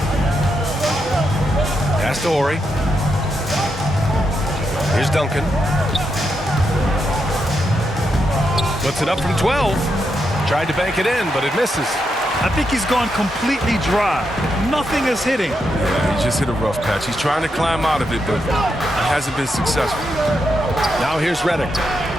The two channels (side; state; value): both; normal; correlation 0.83